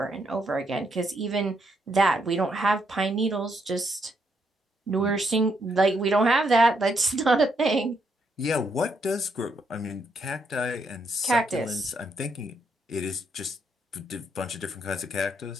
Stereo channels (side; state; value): both; normal; correlation 0.76